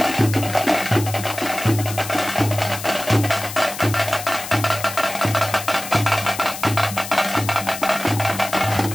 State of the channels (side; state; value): left; noise; hiss, 10 dB below the sound